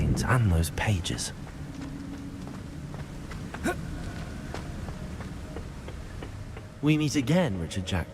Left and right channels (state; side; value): identical; both; correlation 1.00